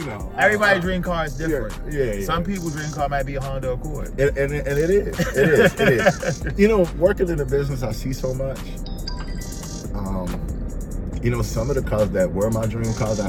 know. Everybody's dream car is different. Yeah. Some people's dream car might be a Honda Accord. And it is. It is. You know, working in the business, I see so much. You know, some of the cars that were my dream cars,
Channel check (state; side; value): identical; both; correlation 1.00